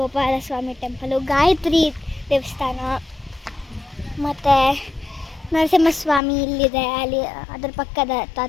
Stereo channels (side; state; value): right; drops out; at 6.2 s